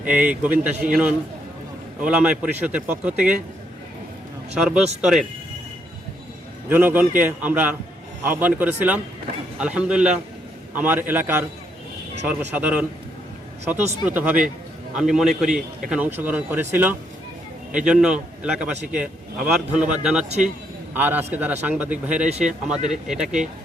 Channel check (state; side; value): normal; both; correlation 0.74